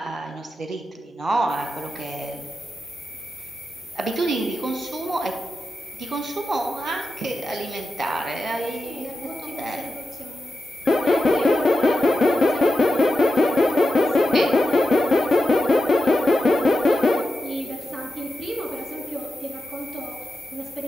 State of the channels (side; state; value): both; normal; correlation 0.90